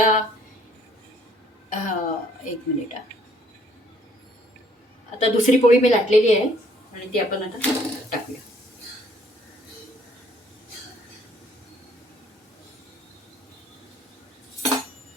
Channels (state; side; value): normal; both; correlation 0.63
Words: एक मिनिट. आता दुसरी पोळी मी लाटलेली आहे आणि ती आपण आता टाकूया.